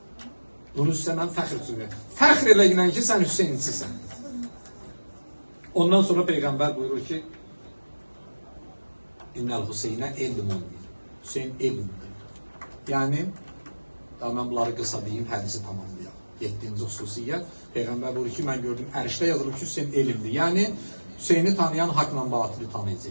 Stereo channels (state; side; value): inverted; both; correlation -1.00